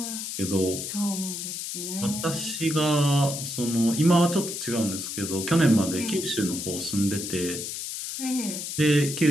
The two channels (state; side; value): noise; left; hiss, 5 dB below the sound